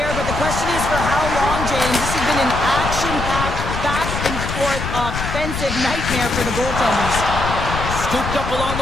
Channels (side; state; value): left; noise; rumble, 5 dB below the sound